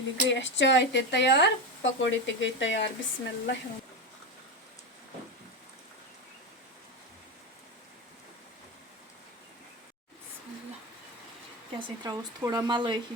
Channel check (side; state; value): both; normal; correlation 0.16